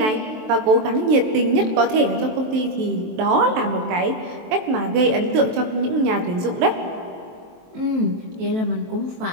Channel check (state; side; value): late; left; 23 ms